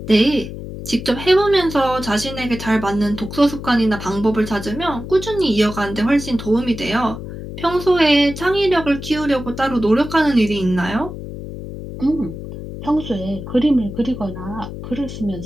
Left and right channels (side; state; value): left; noise; hum, 10 dB below the sound